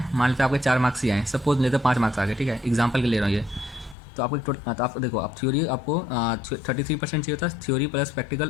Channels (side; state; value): right; drops out; at 4.0 s